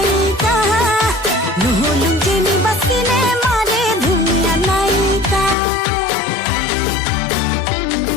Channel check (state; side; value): drops out; right; at 5.6 s